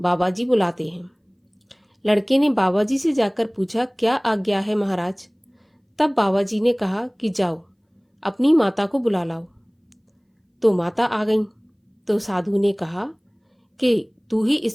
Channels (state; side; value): identical; both; correlation 1.00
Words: जी बुलाते हैं। लड़के ने बाबा जी से जाकर पूछा, क्या आज्ञा है महाराज। तब बाबा जी ने कहा कि जाओ अपनी माता को बुला लाओ। तो माता आ गई। तो साधु ने कहा कि तू ही